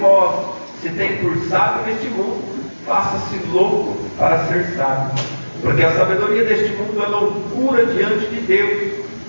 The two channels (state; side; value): inverted; both; correlation -1.00